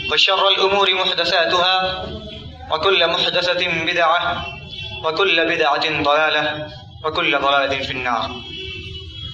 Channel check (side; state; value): both; identical; correlation 1.00